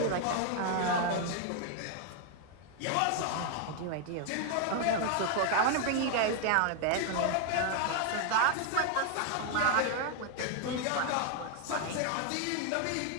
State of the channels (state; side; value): different; both; correlation 0.00